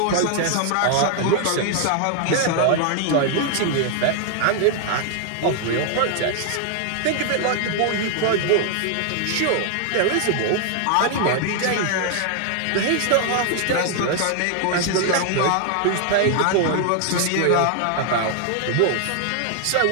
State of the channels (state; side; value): different; both; correlation 0.00